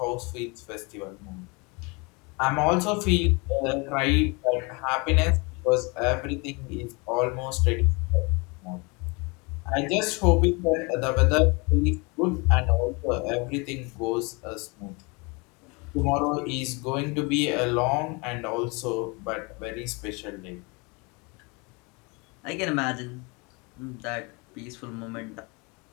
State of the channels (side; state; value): right; quieter; 29.2 dB